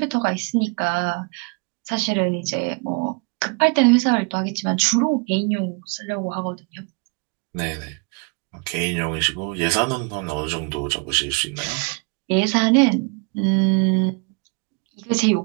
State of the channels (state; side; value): quieter; left; 32.8 dB